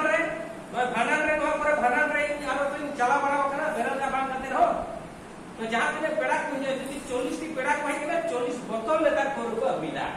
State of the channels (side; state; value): both; identical; correlation 1.00